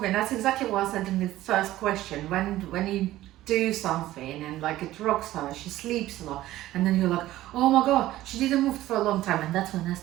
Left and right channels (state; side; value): quieter; left; 15.3 dB